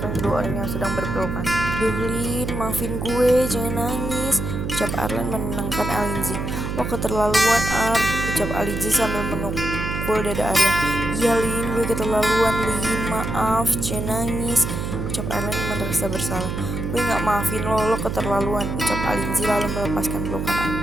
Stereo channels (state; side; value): noise; right; hum, 4 dB below the sound